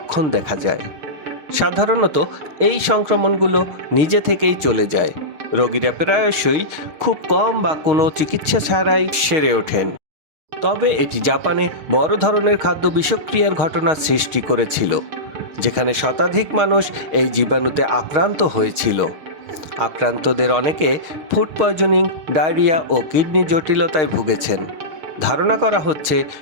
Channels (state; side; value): late; left; 6.4 ms